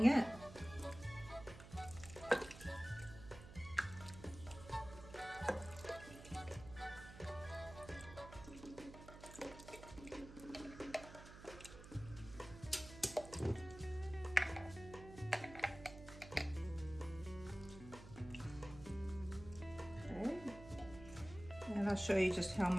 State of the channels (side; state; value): right; noise; hum, 15 dB below the sound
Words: it. Okay. And I'll show you just how